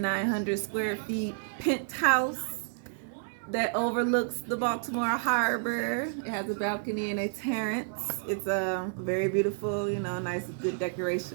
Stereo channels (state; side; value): silent; left; digital silence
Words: square feet penthouse that overlooks the Baltimore Harbor. It has a balcony and a terrace. It's a very beautiful, you know, nice, good